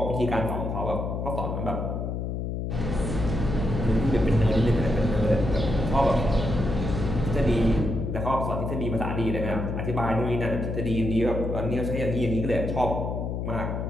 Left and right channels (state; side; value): noise; left; hum, 3 dB below the sound